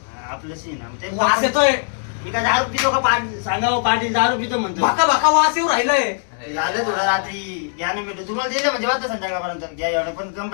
आपलंशी आहे ना, ते वास येतोय. मी काय दारू पितो का? सांगा हो, पाटील दारू पितो म्हणतो. भाका भाका वास येऊ राहिलाय. झालं थोडं रात्री घ्या ना भेटू. तुम्हाला दिलं म्हणजे वाटतं संध्याकाळपर्यंत घ्या एवढं, पण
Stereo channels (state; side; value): silent; right; digital silence